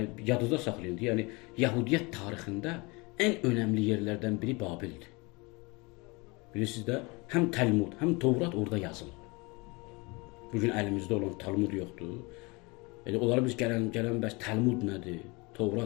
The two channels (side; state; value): right; quieter; 26.6 dB